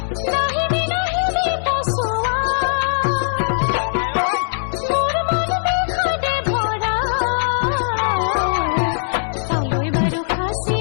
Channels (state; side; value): silent; right; 66 dB below the other